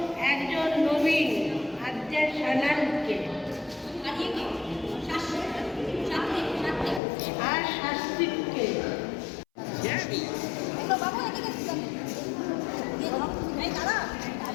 একজন নবীন আদ্যা সানালকে আর শাস্ত্রীকে।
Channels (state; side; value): drops out; right; at 7.0 s